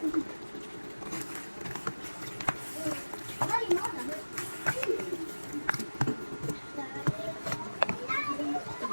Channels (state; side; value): inverted; both; correlation -1.00